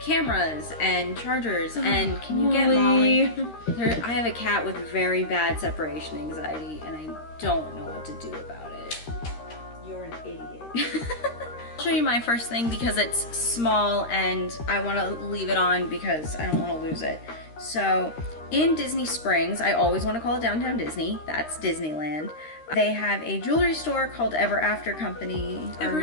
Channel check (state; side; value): late; right; 13 ms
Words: cameras and chargers and can you get Molly? I have a cat with very bad separation anxiety and I don't know what to do about it. You're an idiot. I'll show you my first thing because it's small and I want to leave it on because I don't want to lose it. So in Disney Springs, I always want to call it Downtown Disney, that's Disneyland. They have a jewelry store called Ever After Company or